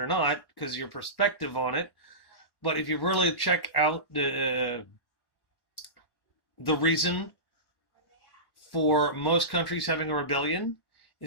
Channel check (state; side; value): late; right; 1.1 ms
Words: not, because your perspective on it, but if you really check out the reason for most countries having a rebellion